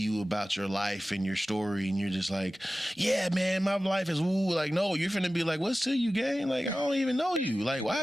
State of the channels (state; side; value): normal; both; correlation 0.96